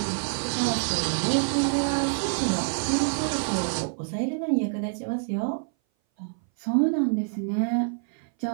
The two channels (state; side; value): silent; left; 58 dB below the other